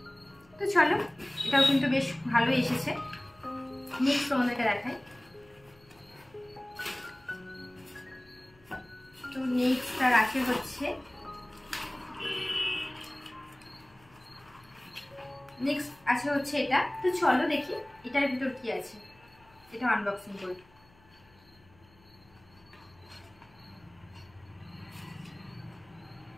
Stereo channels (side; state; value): left; noise; hum, 29 dB below the sound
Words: তো চলো এটাও কিন্তু বেশ ভালো এসেছে। নেক্সট তোমাদেরকে দেখাই। তো নেক্সটটা রাখে হচ্ছে নেক্সট আছে হচ্ছে এটা। তো চলো দেখি এটার ভিতর কি আছে, এটা আনবক্সিং করি।